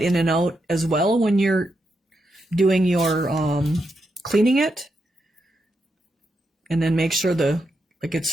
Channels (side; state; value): both; normal; correlation 0.83